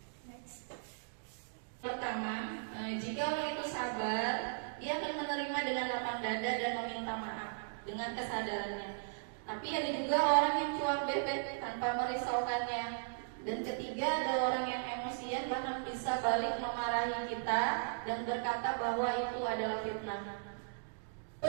Pertama, jika orang itu sabar, dia akan menerima dengan lapang dada dan meminta maaf dengan kesadarannya. Tapi ada juga orang yang cuap bebek tanpa merisaukannya. Dan ketiga, ada orang yang emosian bahkan bisa balik memarahi kita dan berkata bahwa itu adalah fitnah.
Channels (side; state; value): left; silent; digital silence